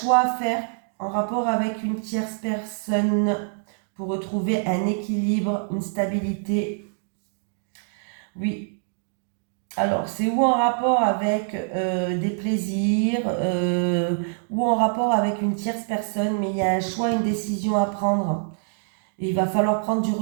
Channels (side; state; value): left; silent; 62 dB below the other